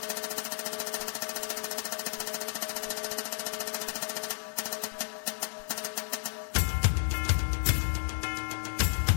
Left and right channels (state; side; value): silent; right; 55 dB below the other